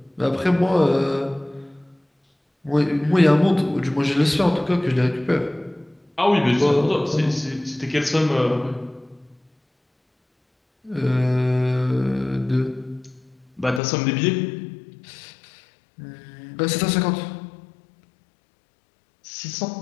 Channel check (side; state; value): right; drops out; at 13.8 s